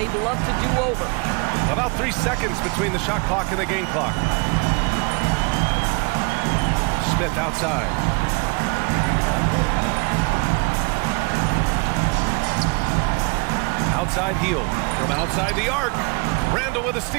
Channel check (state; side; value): quieter; left; 31.2 dB